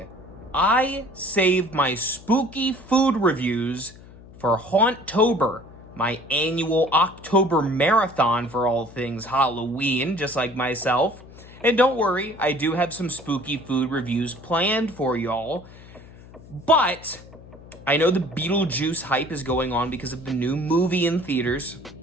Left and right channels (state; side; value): noise; left; hum, 20 dB below the sound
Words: I save my spooky food reviews for Hauntober, my annual October marathon for all things Halloween, just like myself. And don't worry, I do have some spooky food reviews planned for y'all. But I know the Beetlejuice hype is going on because of the new movie in theaters.